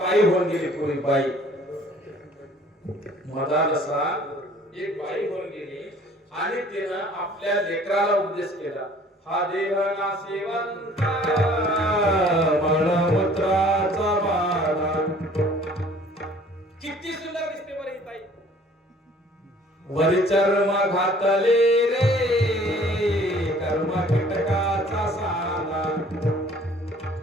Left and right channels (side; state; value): both; normal; correlation 0.54